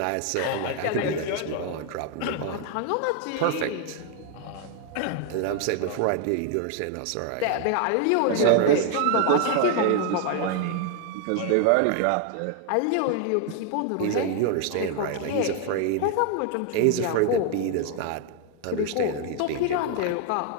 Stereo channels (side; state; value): both; different; correlation 0.00